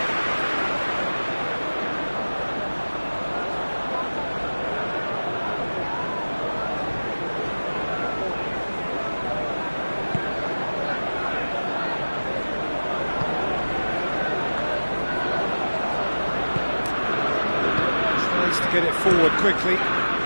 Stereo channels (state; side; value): inverted; both; correlation -1.00